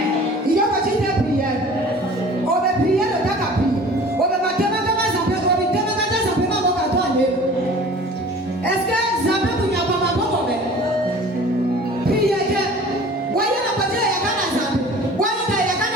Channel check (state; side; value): normal; both; correlation 0.44